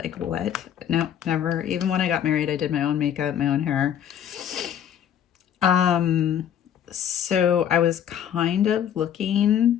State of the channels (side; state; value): right; quieter; 9.6 dB